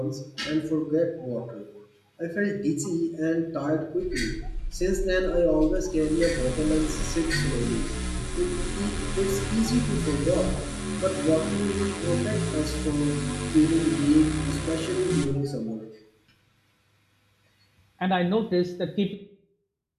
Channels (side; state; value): both; identical; correlation 1.00